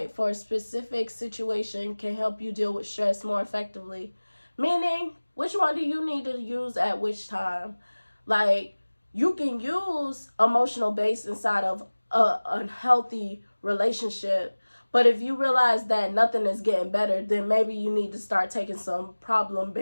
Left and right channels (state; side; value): inverted; both; correlation -1.00